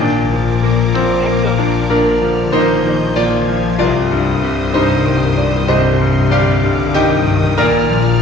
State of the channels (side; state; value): both; normal; correlation 0.60